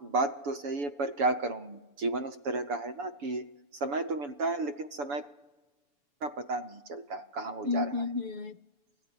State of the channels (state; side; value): late; left; 7.0 ms